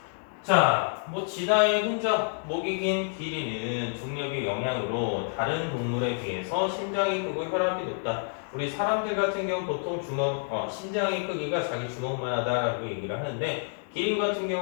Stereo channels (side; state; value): right; silent; 59 dB below the other